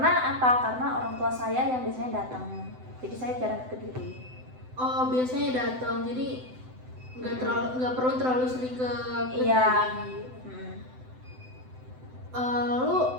apa? Karena orang tua saya yang biasanya datang. Jadi saya jarang ke Kediri. Oh, biasanya datang. Jadi nggak perlu terlalu sering ke Kediri. Iya. Lalu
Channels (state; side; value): late; left; 7.9 ms